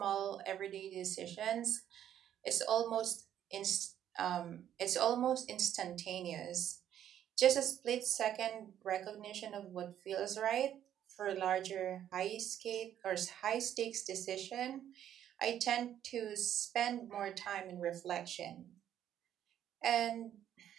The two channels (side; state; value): left; quieter; 10.6 dB